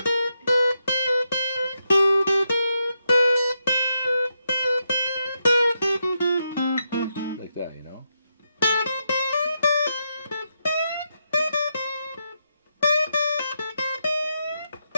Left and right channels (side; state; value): both; inverted; correlation -0.83